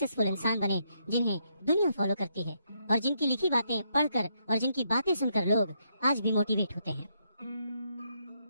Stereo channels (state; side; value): inverted; both; correlation -0.77